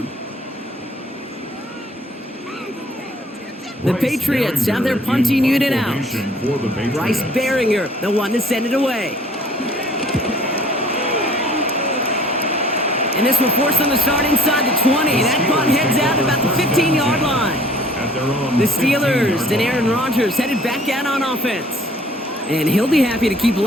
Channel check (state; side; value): normal; both; correlation 0.54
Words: The Patriots have their punting unit out. Bryce Behringer, the one to send it away. And this will force them to start inside the 20. That punt heads out about the 15-yard line. their own The Steelers 15-yard and line. Aaron Rodgers headed back out on offense. And he'll be happy to keep